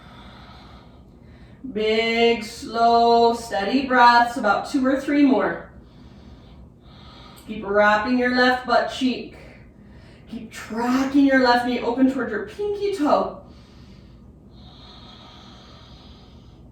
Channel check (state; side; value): identical; both; correlation 1.00